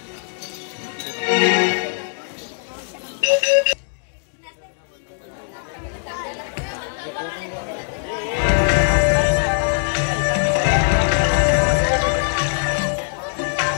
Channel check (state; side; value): silent; right; digital silence